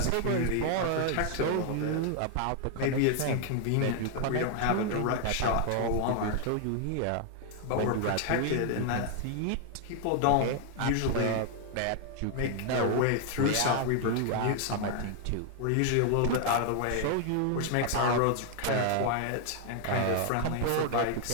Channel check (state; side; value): different; both; correlation 0.00